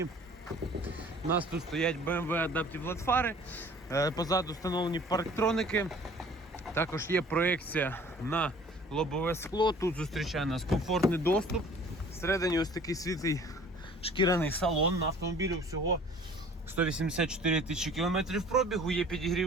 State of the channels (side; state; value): both; normal; correlation 0.50